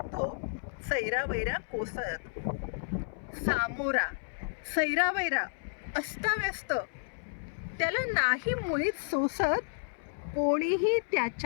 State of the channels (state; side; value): silent; right; 57 dB below the other